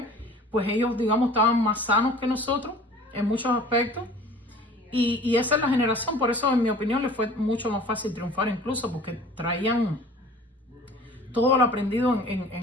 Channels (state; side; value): normal; both; correlation 0.46